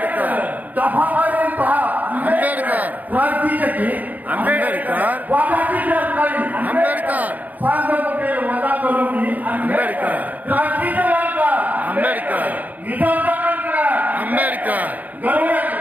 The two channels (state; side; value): late; left; 0.079 ms